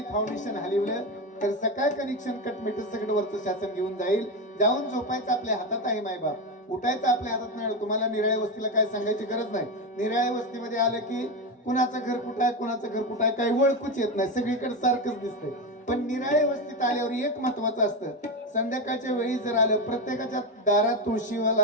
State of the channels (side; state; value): both; normal; correlation 0.14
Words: फाउंडेशन हलवलं तर सकाळ कनेक्शन कट मीटर सगळं वरचं शासन घेऊन जाईल. जाऊन झोपायचं आपल्या हातात आहे मायबाप, उठायचं आपल्या हातात नाही. तुम्हाला निराळ्या वस्तीला काय सांगायची गरज नाही. निराळ्या वस्तीमध्ये आलं की कुणाचं घर कुठं आहे कुणाचं घर कुठं आहे काही ओळखूच येत नाही, सगळीकडे सारखंच दिसतंय. पण निराळ्या वस्तीत आल्यावर एक महत्वाचं असतं, संध्याकाळच्या वेळी जर आलं प्रत्येकाच्या दारात